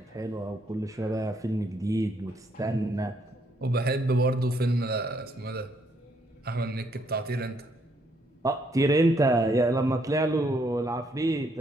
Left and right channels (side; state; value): both; normal; correlation 0.71